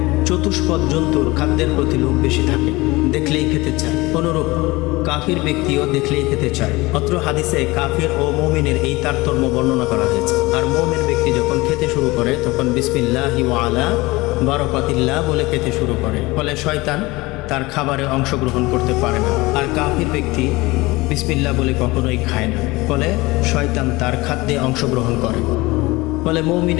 চতুষ্পদ জন্তুর খাদ্যের প্রতি লোভ বেশি থাকে, দেখলেই খেতে চায়। অনুরূপ কাফির ব্যক্তিও দেখলেই খেতে চায়। অত্র হাদিসে কাফির ও মুমিনের এই তারতম্য বর্ণনা করা হয়েছে। আর মুমিন ব্যক্তি যখন খেতে শুরু করে তখন বিসমিল্লাহি ওয়া আলা বারাকাতিল্লাহ বলে খেতে শুরু করে, ফলে শয়তান তার খাবারে অংশগ্রহণ করতে পারে না। আর কাফির ব্যক্তি বিসমিল্লাহ বলে কখনোই খায় না, ফলে শয়তান তার খাদ্যে অংশগ্রহণ করে। ফলে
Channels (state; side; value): quieter; right; 21.9 dB